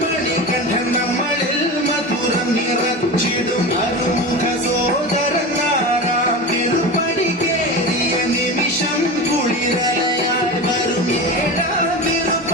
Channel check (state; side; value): normal; both; correlation 0.26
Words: മണികണ്ഠൻ നമ്മളിൽ മധുരം നിറച്ചിടും അരുമുഖ സോദരൻ ആറാം തിരുപ്പടി കേറിയ നിമിഷം കുളിരലയായി വരും ഏഴാം